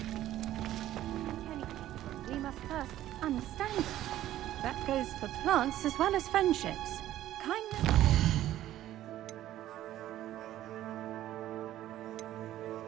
We must first understand. That goes for plants as well as friendships. Kindness.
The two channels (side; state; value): left; quieter; 13.4 dB